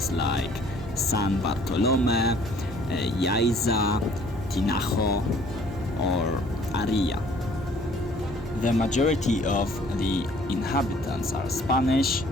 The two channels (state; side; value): normal; both; correlation 0.57